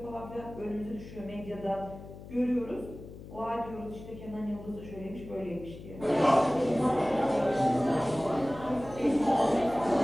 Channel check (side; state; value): left; noise; hum, 15 dB below the sound